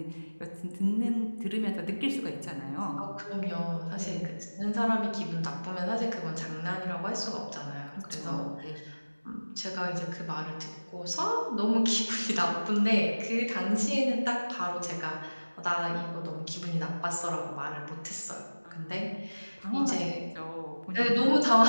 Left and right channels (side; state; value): both; inverted; correlation -1.00